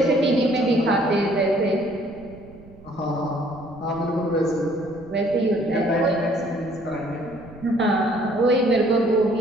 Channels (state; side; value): noise; right; rumble, 22 dB below the sound